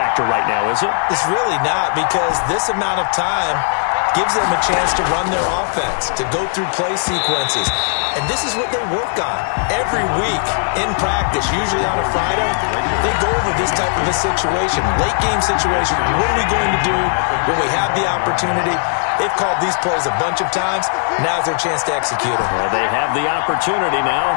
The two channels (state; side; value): silent; right; digital silence